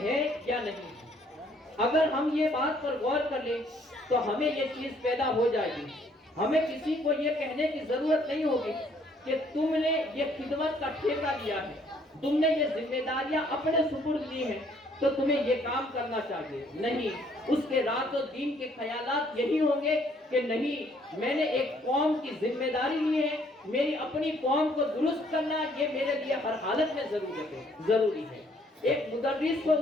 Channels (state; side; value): normal; both; correlation 0.64